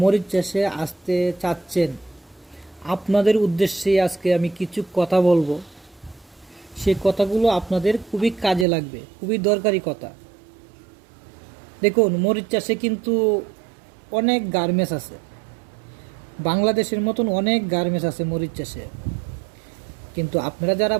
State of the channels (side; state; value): left; drops out; at 8.7 s